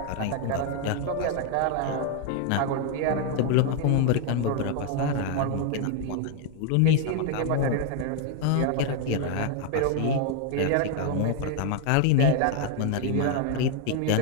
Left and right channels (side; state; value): both; different; correlation 0.00